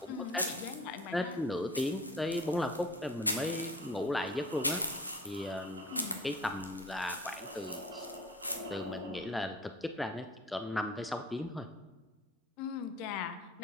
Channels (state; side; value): normal; both; correlation 0.42